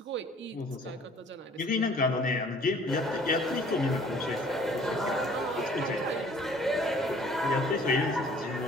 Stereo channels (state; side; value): normal; both; correlation 0.54